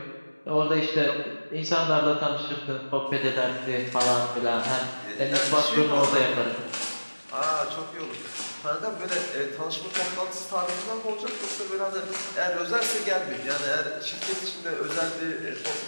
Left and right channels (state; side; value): inverted; both; correlation -1.00